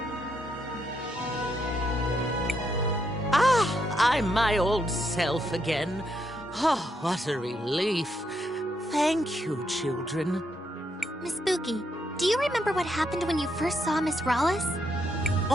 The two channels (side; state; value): both; normal; correlation 0.78